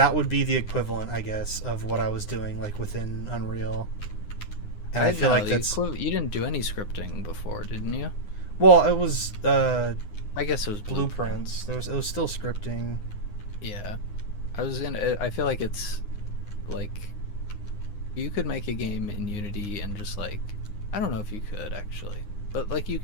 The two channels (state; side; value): late; right; 9.8 ms